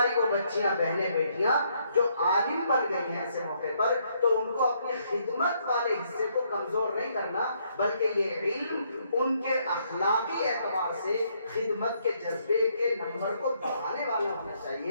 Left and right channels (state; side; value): inverted; both; correlation -0.71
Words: وہ بچیاں, بہنیں, بیٹیاں جو عالم بن گئی ہیں ایسے موقع پر, تو ان کو اپنی خدمت والے حصے کو کمزور نہیں کرنا, بلکہ یہ علم ان کے اخلاقی اعتبار سے خدمت کے جذبے کے نمبر کو بڑھانے والا ہونا